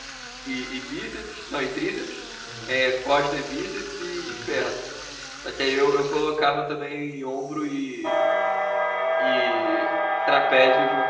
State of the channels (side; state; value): both; identical; correlation 1.00